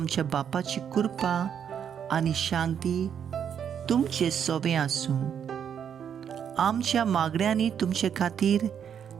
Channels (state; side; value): quieter; left; 8.3 dB